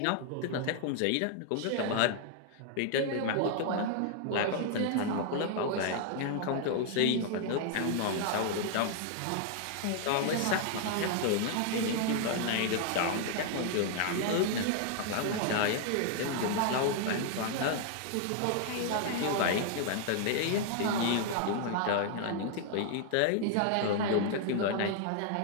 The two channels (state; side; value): different; both; correlation 0.00